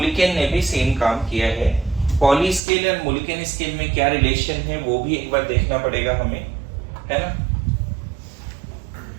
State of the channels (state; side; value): drops out; left; at 2.6 s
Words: ने भी सेम काम किया है। पॉली स्केल और मुलिकन स्केल में क्या रिलेशन है वो भी एक बार देखना पड़ेगा हमें, है ना।